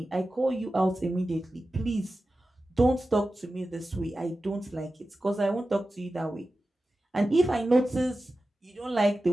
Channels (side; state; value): both; normal; correlation 0.94